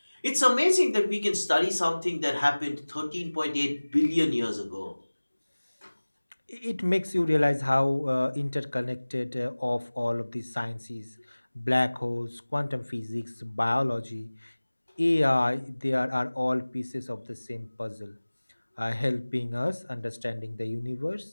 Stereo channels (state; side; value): inverted; both; correlation -1.00